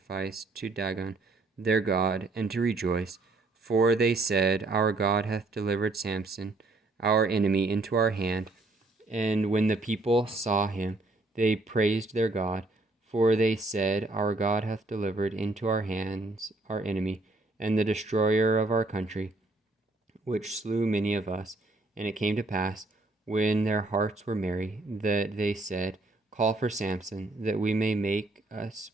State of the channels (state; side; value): quieter; left; 3.0 dB